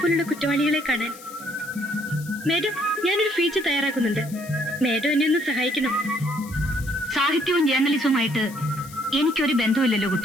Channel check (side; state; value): left; noise; hiss, 18 dB below the sound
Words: പോലുള്ള കുറ്റവാളികളെ കാണാൻ. മാഡം, ഞാനൊരു ഫീച്ചർ തയ്യാറാക്കുന്നുണ്ട്. മാഡം എന്നെ ഒന്ന് സഹായിക്കണം. സാഹിത്യവും ജേർണലിസവുമായിട്ട് എനിക്കൊരു ബന്ധമില്ലല്ലോ